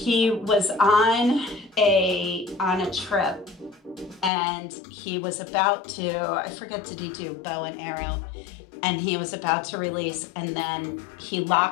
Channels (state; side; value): drops out; right; at 4.3 s